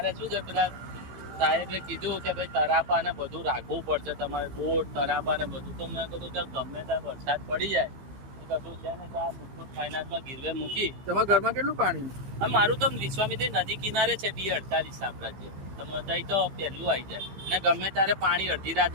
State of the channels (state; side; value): late; left; 15 ms